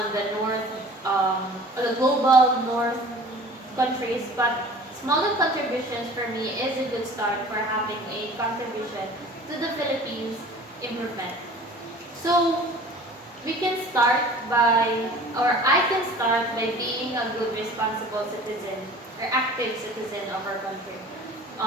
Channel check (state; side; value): normal; both; correlation 0.45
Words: the north, the global north countries, but smaller contributions for me is a good start for having a contribution to the Philippines improvement. So we can start by, or I can start by being a good responsible citizen or active citizen of our country.